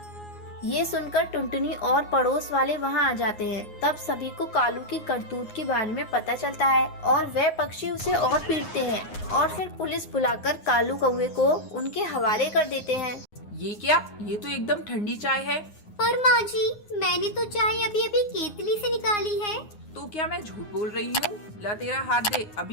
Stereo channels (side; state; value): right; late; 9.6 ms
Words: ये सुनकर टुनटुनी और पड़ोस वाले वहाँ आ जाते हैं। तब सभी को कालू की करतूत के बारे में पता चलता है और वह पक्षी उसे और पीटते हैं और फिर पुलिस बुलाकर कालू कौवे को उनके हवाले कर देते हैं। ये क्या? ये तो एकदम ठंडी चाय है। पर माँ जी, मैंने तो चाय अभी अभी केतली से निकाली है। तो क्या मैं झूठ बोल रही हूँ? ला तेरा हाथ दे,